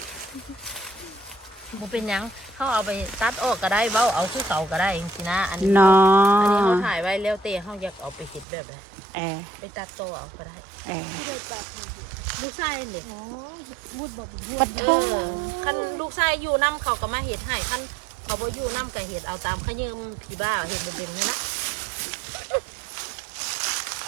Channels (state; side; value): drops out; left; at 8.5 s